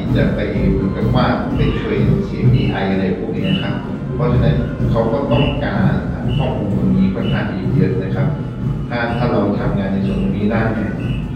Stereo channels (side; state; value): both; identical; correlation 1.00